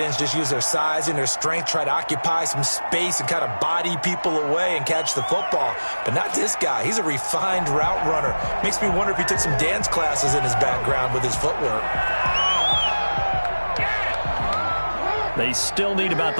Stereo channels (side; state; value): both; inverted; correlation -1.00